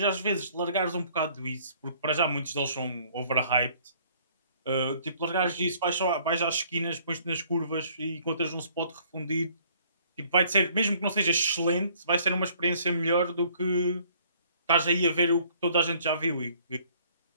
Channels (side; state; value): both; inverted; correlation -0.59